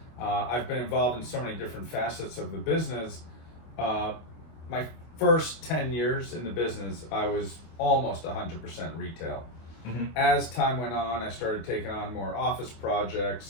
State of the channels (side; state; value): right; late; 25 ms